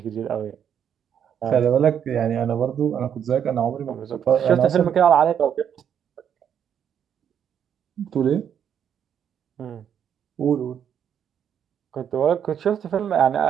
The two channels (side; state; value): left; quieter; 8.6 dB